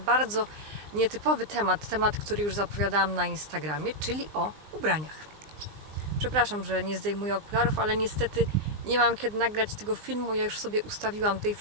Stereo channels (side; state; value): left; late; 19 ms